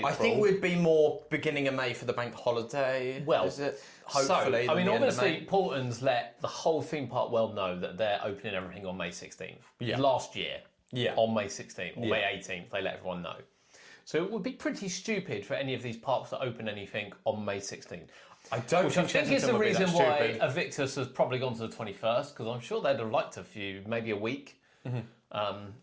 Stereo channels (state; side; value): identical; both; correlation 1.00